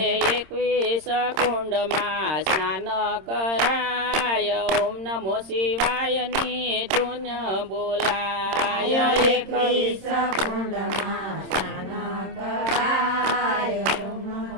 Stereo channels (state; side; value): late; left; 26 ms